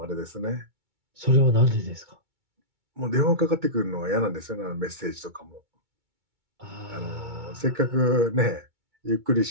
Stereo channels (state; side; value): late; left; 2.2 ms